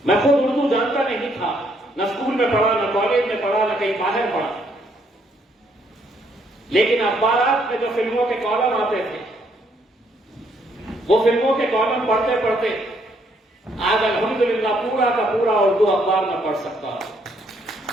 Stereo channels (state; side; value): normal; both; correlation 0.70